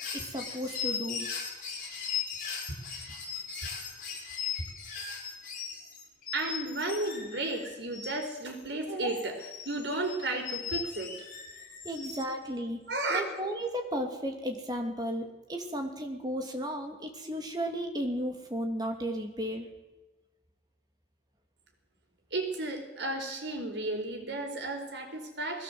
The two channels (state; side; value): normal; both; correlation 0.28